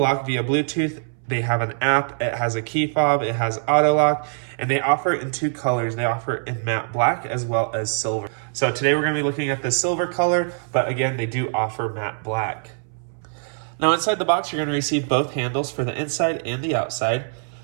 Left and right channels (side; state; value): left; silent; 63 dB below the other